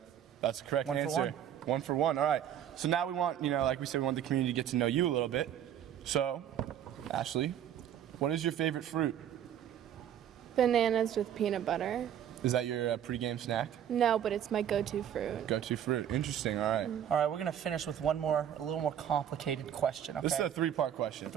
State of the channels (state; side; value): quieter; left; 10.0 dB